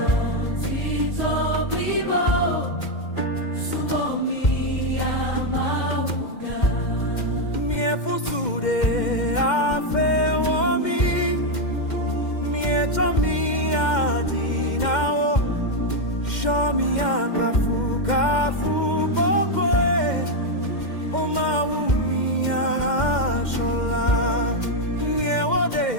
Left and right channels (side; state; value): right; late; 2.1 ms